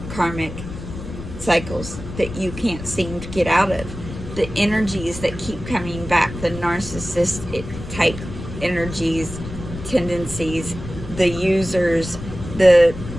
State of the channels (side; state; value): left; noise; rumble, 11 dB below the sound